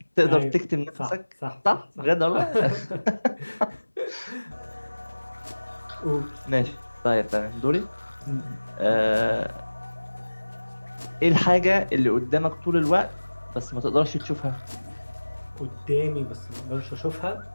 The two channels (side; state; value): both; inverted; correlation -1.00